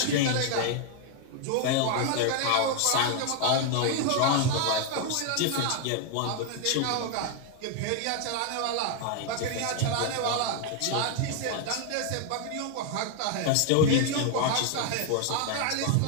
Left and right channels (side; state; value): both; different; correlation 0.00